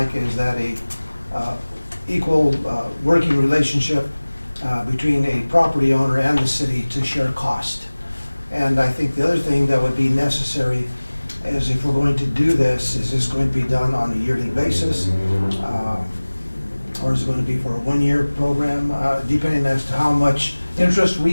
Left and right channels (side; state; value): both; inverted; correlation -1.00